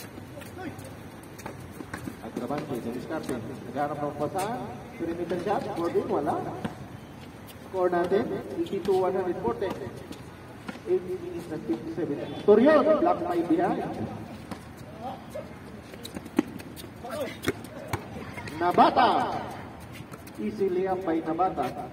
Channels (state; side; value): identical; both; correlation 1.00